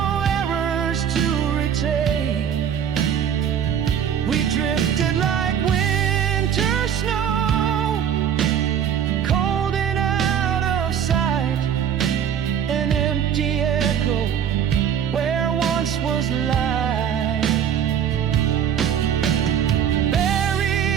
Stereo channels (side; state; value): left; quieter; 8.8 dB